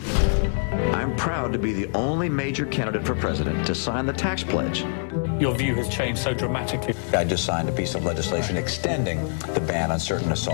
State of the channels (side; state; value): right; silent; 62 dB below the other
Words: I'm proud to be the only major candidate for president to sign the tax pledge. Your view has changed so dramatically. I just signed a piece of legislation extending the ban on certain